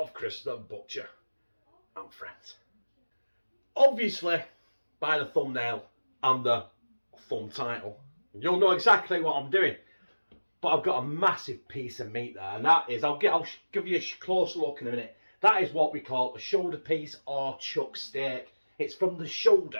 Chris the Butcher and Friends. Obviously, by the thumbnail and the thumb title, you'll know exactly what I'm doing. But I've got a massive piece of meat there, and that is, I'll give you a close look in a minute. That is what we call a shoulder piece or chuck steak. It's from the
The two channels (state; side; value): inverted; both; correlation -1.00